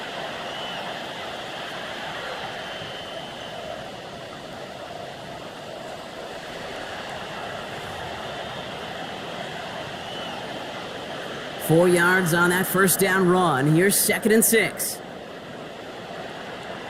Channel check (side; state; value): both; identical; correlation 1.00